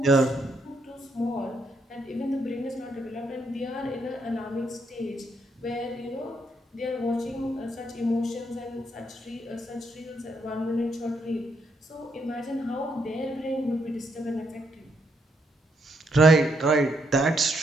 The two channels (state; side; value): normal; both; correlation 0.76